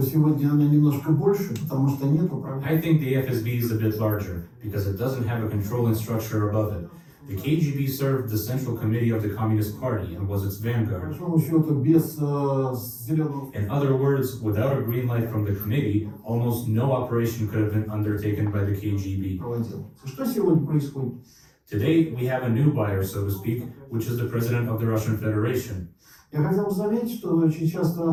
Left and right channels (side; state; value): both; identical; correlation 1.00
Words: сегодня она немножко больше, потому что нет управления. I think the FSB is a bit larger, because it doesn't have a controlling structure above it. The KGB served the Central Committee of the Communist Party and was its По vanguard. большому счету, без зеленого... In other words, without a green light from the committee, almost no operation could have been undertaken by the KGB. проводил. Что сегодня происходит? Today, we have a new buyer, so to speak, which is the President of the Russian Federation. Я хотел бы заметить, что очень